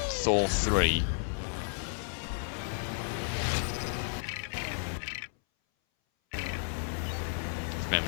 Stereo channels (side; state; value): right; silent; 56 dB below the other